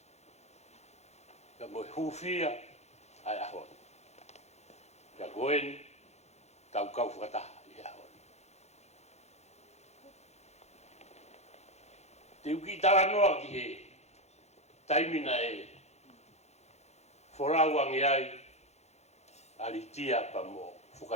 ka mo i hufia ai ahoni. Ka goeni tau kau whakataha i ahoni. Te uki tala noa ki he taimina e whorauangi ai alitia pa mo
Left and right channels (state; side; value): late; right; 0.32 ms